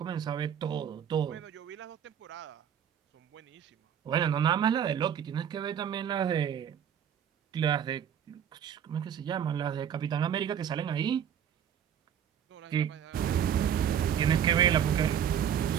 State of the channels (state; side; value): quieter; left; 8.9 dB